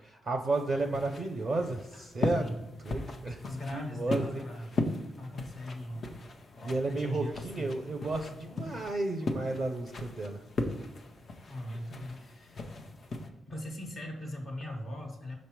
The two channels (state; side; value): normal; both; correlation 0.85